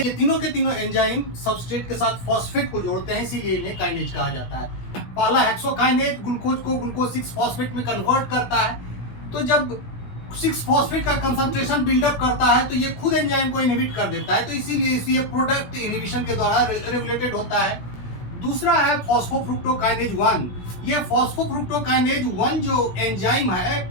तीनों के तीनों एंजाइम सबस्ट्रेट के साथ फॉस्फेट को जोड़ते हैं, इसीलिए इन्हें काइनेज कहा जाता है. पहला हेक्सोकाइनेज ग्लूकोज को ग्लूकोज 6 फॉस्फेट में कन्वर्ट करता है. तो जब 6 फॉस्फेट का कंसंट्रेशन बिल्डअप करता है तो ये खुद एंजाइम को इनहिबिट कर देता है, तो इसीलिए ये प्रोडक्ट इनहिबिशन के द्वारा रेगुलेटेड होता है. दूसरा है फॉस्फोफ्रुक्टोकाइनेज 1. ये फॉस्फोफ्रुक्टोकाइनेज 1 जो एंजाइम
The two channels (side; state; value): right; late; 17 ms